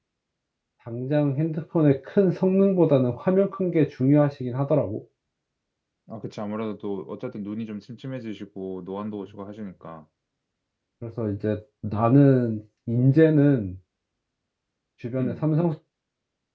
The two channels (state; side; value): identical; both; correlation 1.00